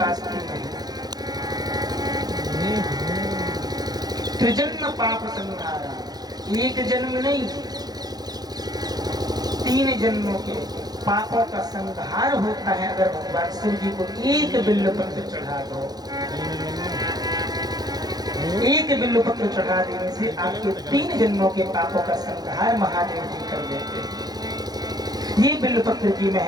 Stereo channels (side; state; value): left; late; 0.19 ms